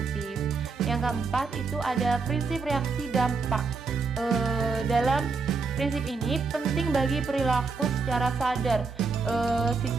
Yang keempat itu ada prinsip reaksi dampak. Dalam prinsip ini penting bagi perilaku secara sadar.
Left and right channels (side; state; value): left; quieter; 4.6 dB